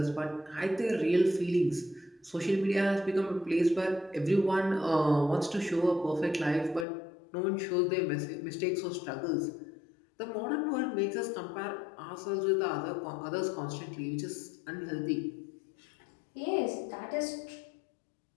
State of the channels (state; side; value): drops out; right; at 6.9 s